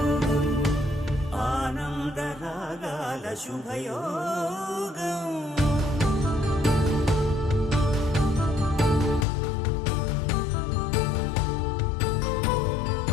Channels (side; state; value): right; drops out; at 9.2 s